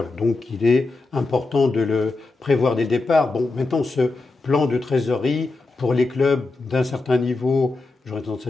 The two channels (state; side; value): quieter; right; 3.5 dB